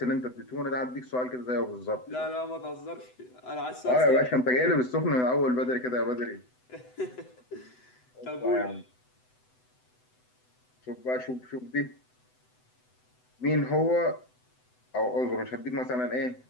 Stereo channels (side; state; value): right; late; 7.9 ms